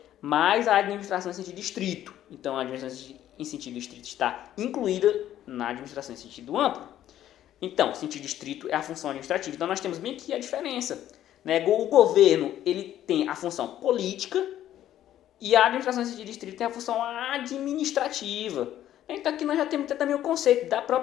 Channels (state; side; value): quieter; right; 12.0 dB